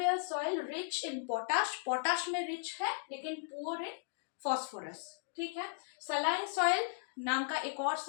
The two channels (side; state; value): right; silent; digital silence